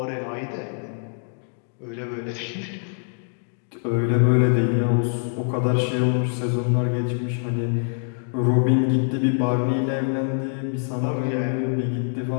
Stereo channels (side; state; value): right; silent; 62 dB below the other